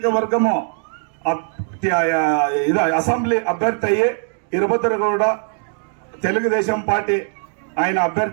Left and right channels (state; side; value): silent; left; 56 dB below the other